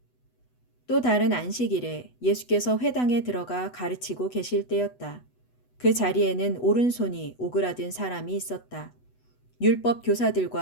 또 다른 안식일에 예수께서 회당에 들어가 가르치고 계실 때였다. 그 자리에는 오른손이 오그라든 사람이 있었다. 율법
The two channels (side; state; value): right; late; 8.0 ms